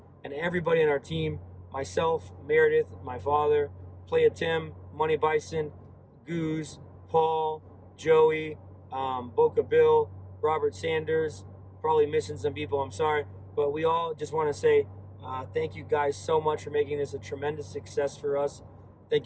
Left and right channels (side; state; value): both; identical; correlation 1.00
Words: And everybody on our team, myself, Meredith, my father, Playa Tim, Money Bison, Goose, Paul, Joey, Boca Bill, Robert Sanders, probably missing some people, I'm sorry. But we all just want to say thank you guys so much for making this a tremendous success for us. Thank